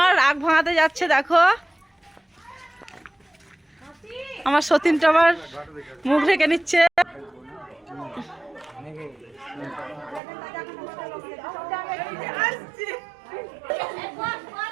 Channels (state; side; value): drops out; left; at 10.2 s